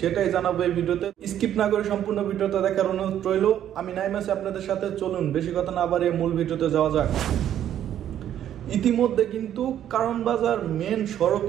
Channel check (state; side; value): quieter; left; 10.8 dB